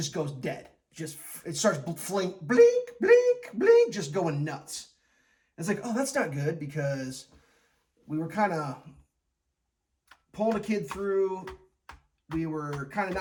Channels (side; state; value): both; identical; correlation 1.00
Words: goes dead. It starts blink, blink, blink, blink, just going nuts. It's like, oh, that's not good, because we were kind of pulling a kid through. We were kind of